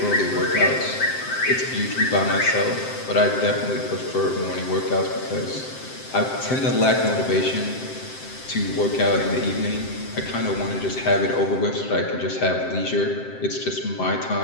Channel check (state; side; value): late; right; 7.7 ms